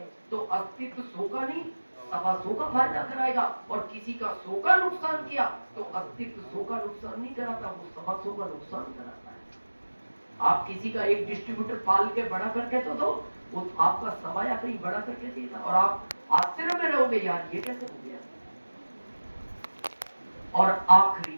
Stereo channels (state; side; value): inverted; both; correlation -1.00